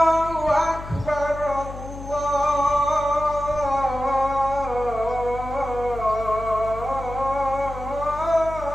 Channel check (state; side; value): noise; left; hum, 11 dB below the sound